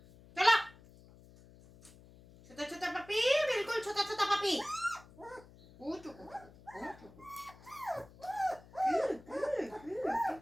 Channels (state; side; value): noise; left; hum, 22 dB below the sound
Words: চলো। ছোটা ছোটা পাপি, বিলকুল ছোটা ছোটা পাপি।